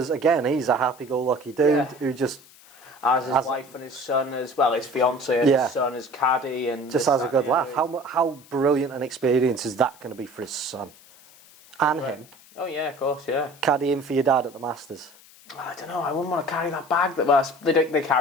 again, he's a happy-go-lucky dude who just as his wife and his son as well, his fiance and his son, his caddy, and just has a good laugh. How brilliant an experience is that going to be for his son and him? Oh yeah, of course, yeah. Caddying for your dad at the Masters. I don't know. I wouldn't want to carry that bag. They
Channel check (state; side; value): noise; left; hiss, 24 dB below the sound